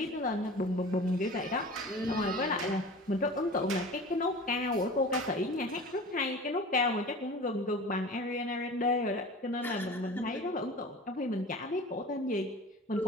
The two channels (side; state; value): both; normal; correlation 0.38